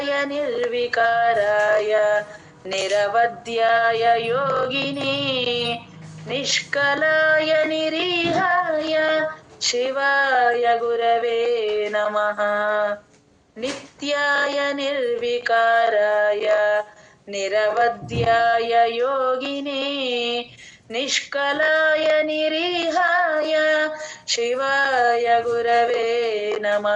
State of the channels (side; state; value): both; identical; correlation 1.00